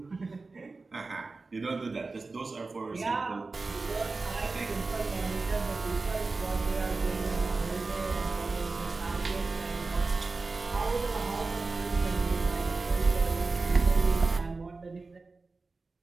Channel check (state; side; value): quieter; left; 3.8 dB